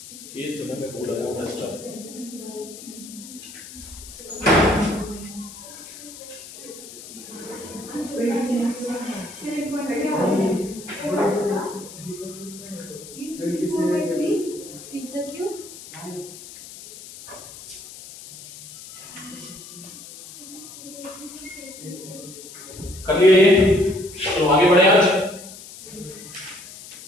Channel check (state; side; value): noise; left; hiss, 15 dB below the sound